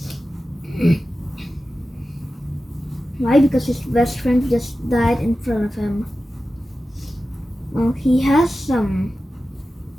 Why? Because his best friend just died in front of him. Well, he has some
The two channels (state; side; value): normal; both; correlation 0.93